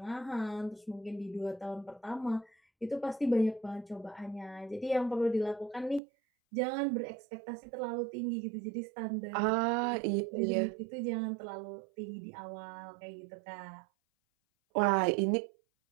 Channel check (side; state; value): left; drops out; at 6.0 s